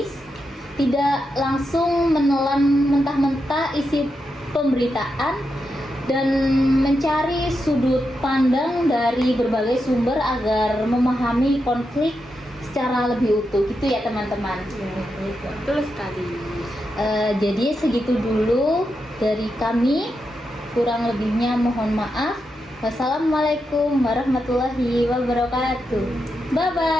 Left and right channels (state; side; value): normal; both; correlation 0.86